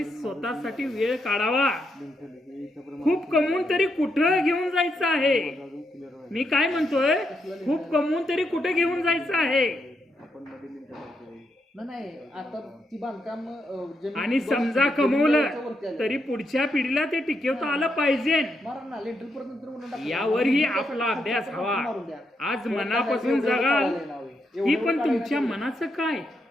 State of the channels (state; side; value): normal; both; correlation 0.80